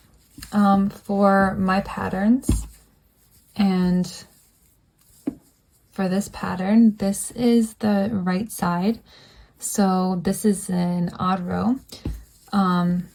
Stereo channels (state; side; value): identical; both; correlation 1.00